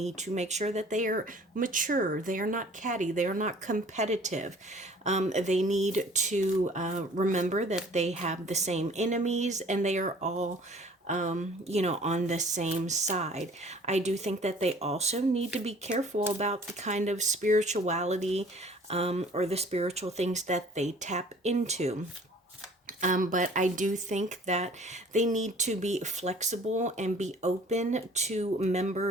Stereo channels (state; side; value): normal; both; correlation 0.51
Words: to make sure that they are mature. They are not catty. They are not competitive. They need to remember that they have the same enemies, and they are all on the same side. I do think that they also need to be careful about the kind of spirituality or the spiritual things that they tap into. But I do think that they need to be flexible and be open to